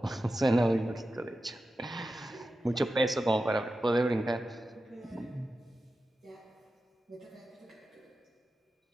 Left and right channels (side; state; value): both; normal; correlation 0.92